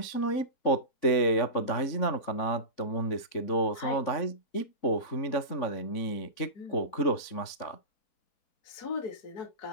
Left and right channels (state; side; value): late; right; 3.6 ms